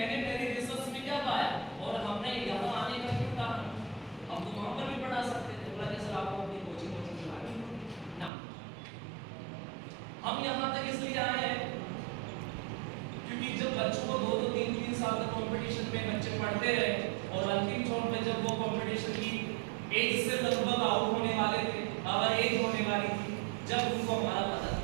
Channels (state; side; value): drops out; left; at 8.3 s